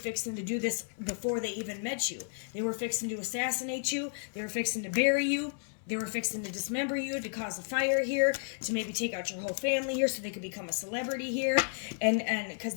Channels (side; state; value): right; silent; 56 dB below the other